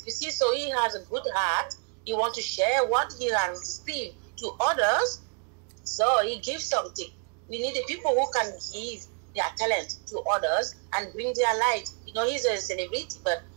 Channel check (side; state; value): left; quieter; 39.2 dB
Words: you see, so he has a good heart. He wants to share what he has received to others. So he gives something. We need the people who can give their talent to others and bring their light. You know, he's a celebrity, but